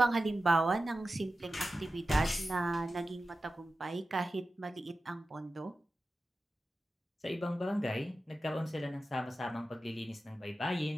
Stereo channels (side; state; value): both; normal; correlation 0.93